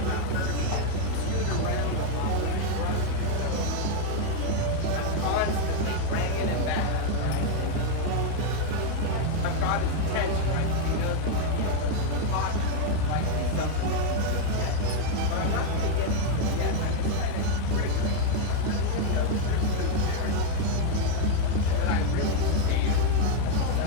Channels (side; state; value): both; different; correlation 0.01